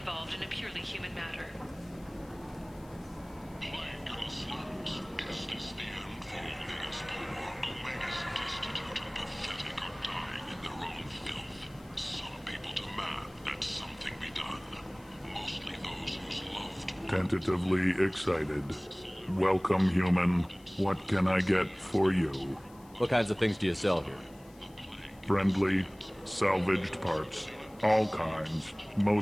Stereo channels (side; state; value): left; noise; hiss, 27 dB below the sound